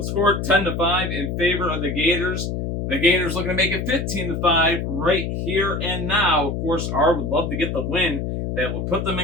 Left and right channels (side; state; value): left; noise; hum, 3 dB below the sound